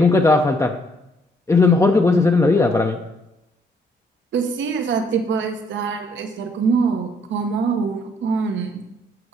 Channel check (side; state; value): both; normal; correlation 0.68